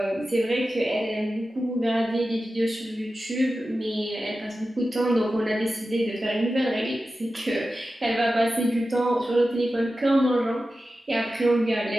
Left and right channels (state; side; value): normal; both; correlation 0.93